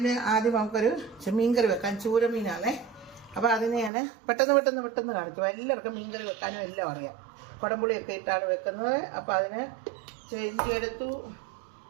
ആദ്യം നമുക്കൊരു മീൻകറി വെക്കാൻ. ചൂരമീനാണേ. അപ്പോൾ അതിനെ ഞാൻ പെട്ടെന്ന് കാണിച്ചു. എല്ലാവർക്കും മീൻകറി വെക്കാനും എല്ലാം അറിയാം. കുടംപുളിയൊക്കെ ഇട്ടാണ് വെക്കുന്നത്. അപ്പോൾ അതിന് ഇഞ്ചി എടുത്തു.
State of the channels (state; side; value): drops out; left; at 3.9 s